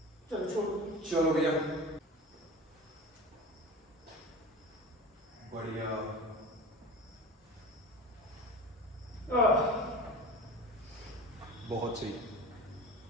चलो छोड़ो, चलो भैया, बढ़िया। बहुत सही।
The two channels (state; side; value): normal; both; correlation 0.33